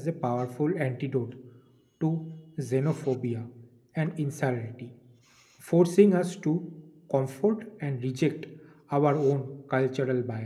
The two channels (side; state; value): both; identical; correlation 1.00